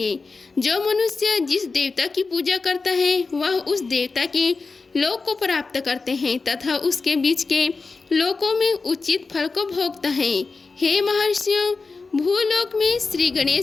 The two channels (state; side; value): quieter; right; 4.2 dB